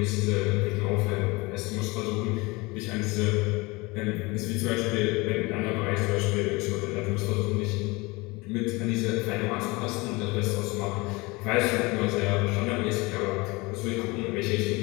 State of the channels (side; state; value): right; quieter; 24.4 dB